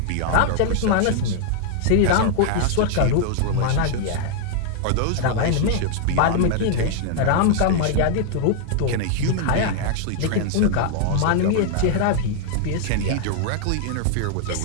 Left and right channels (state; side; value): different; both; correlation 0.00